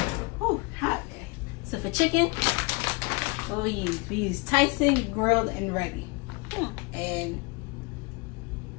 Oh, hot. Okay. So for chicken, what we use Tyson grilled and ready. And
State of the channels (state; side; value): quieter; right; 28.9 dB